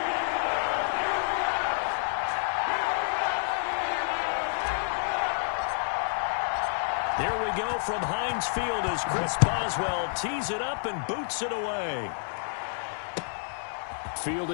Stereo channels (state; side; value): silent; right; 59 dB below the other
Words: Here we go from Heinz Field as Chris Boswell tees it up and boots it away.